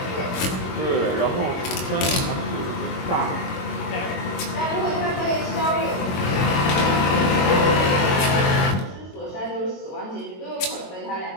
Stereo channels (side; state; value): right; late; 22 ms